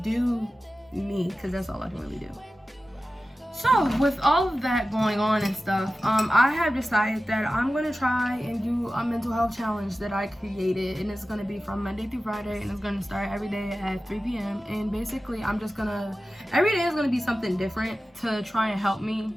do me, because that's all I can really do. So with all of that going on and stuff, I have decided that I'm going to try and do a mental health challenge that I created, and it's going to be from Monday through Friday, and it's going to start every day at 3 p.m. And basically I'm just going to, every day is going to be something different to try and help me,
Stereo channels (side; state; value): both; normal; correlation 0.95